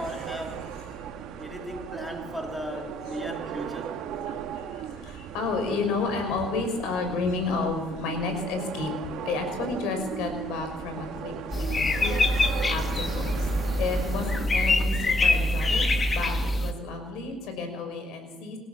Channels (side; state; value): both; normal; correlation 0.69